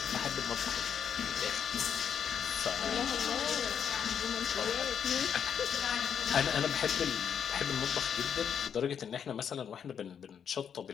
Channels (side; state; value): right; quieter; 7.9 dB